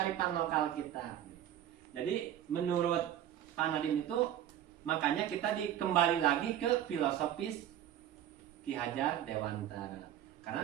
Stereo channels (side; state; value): left; quieter; 11.2 dB